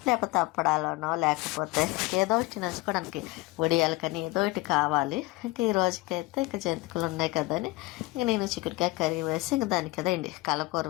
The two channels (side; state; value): right; quieter; 21.4 dB